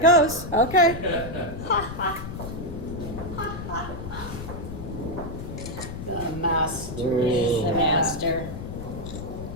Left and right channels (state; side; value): noise; left; rumble, 8 dB below the sound